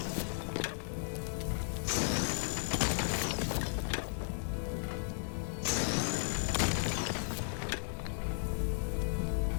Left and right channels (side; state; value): right; silent; digital silence